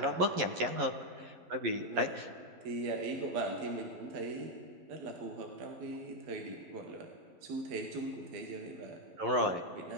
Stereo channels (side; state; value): left; late; 11 ms